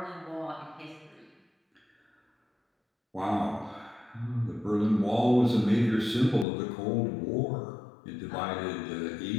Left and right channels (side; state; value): right; drops out; at 6.5 s